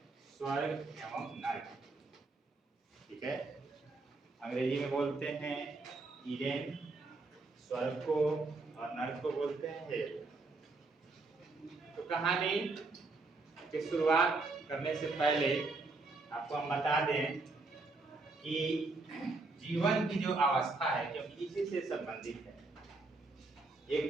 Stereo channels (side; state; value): left; quieter; 3.5 dB